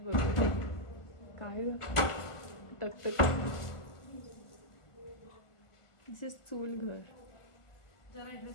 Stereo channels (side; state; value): right; late; 1.2 ms